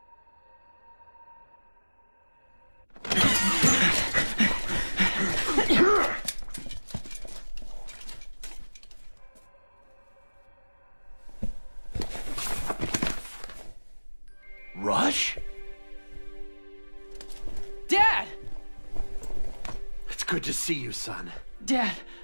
Rush? Dad! It's good to see you, son. Dad,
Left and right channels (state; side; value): inverted; both; correlation -1.00